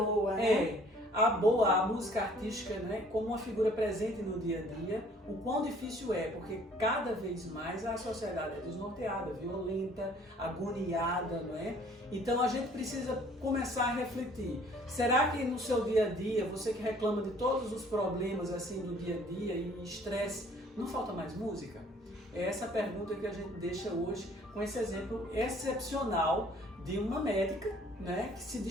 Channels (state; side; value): normal; both; correlation 0.56